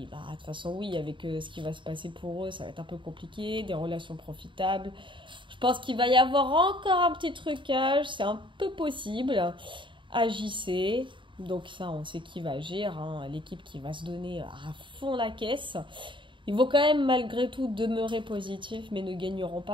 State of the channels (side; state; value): left; late; 0.24 ms